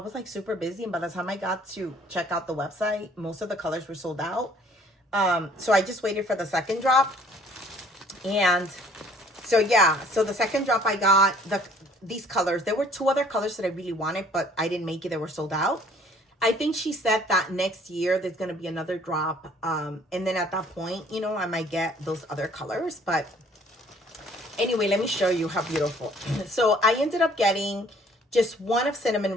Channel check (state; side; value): normal; both; correlation 0.57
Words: like super busy. And by the time I got to check out the website, most of the colors were sold out. So I just waited for the second drop. And so, yeah. So the second drop I got these colors. There were two other colors that I really wanted, but I didn't make it. They were sold out. I think she said that next year there's going to be another drop. And then at that point, you know, I might get those other colors. But anyway, let me show you how beautiful. So I ended up getting just one of Cinnamon